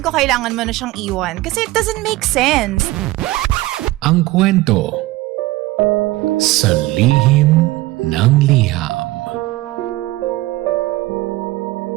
kailangan mo na siyang iwan kasi it doesn't make sense. Ang kwento sa lihim ng liham.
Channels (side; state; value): left; quieter; 18.7 dB